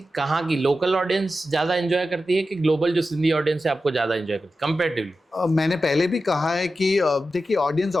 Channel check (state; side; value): normal; both; correlation 0.92